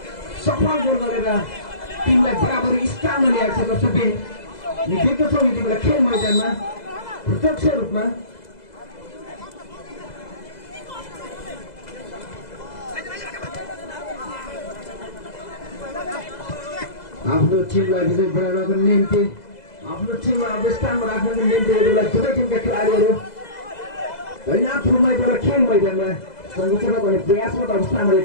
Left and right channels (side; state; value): right; late; 2.0 ms